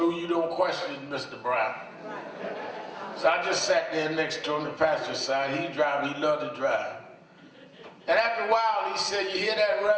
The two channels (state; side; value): identical; both; correlation 1.00